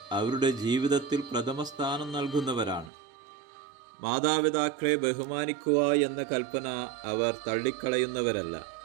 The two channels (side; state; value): left; drops out; at 2.9 s